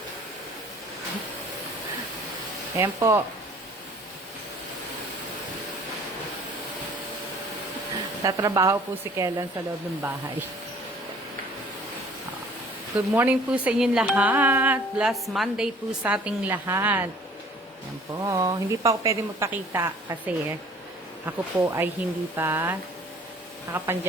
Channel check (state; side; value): normal; both; correlation 0.52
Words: Ayan po. Tatrabaho po si Kellan sa loob ng bahay. Good morning po sa inyong lahat. Last Monday po sa ating lahat. Ayan po. Hindi pa ako pwede magpakita kasi ako po ay hindi pa